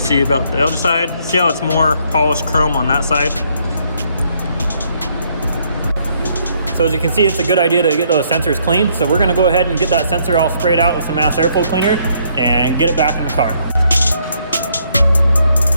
see about the other side. See how it's more polished chrome on that side. So as you can see, it's a good idea to get those sensors clean. So we're gonna go ahead and get that sensor all sprayed out with some mass airflow cleaner and get it back in the car.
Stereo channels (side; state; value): both; inverted; correlation -0.69